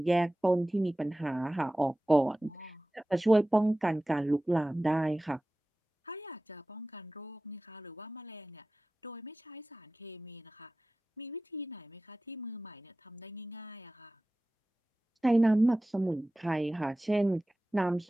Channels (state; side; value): normal; both; correlation 0.96